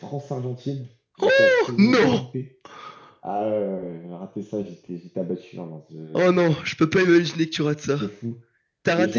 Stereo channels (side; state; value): both; identical; correlation 1.00